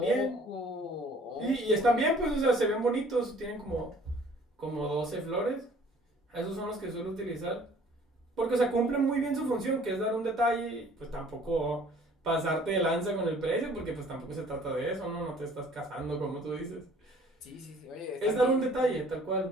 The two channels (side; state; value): both; normal; correlation 0.54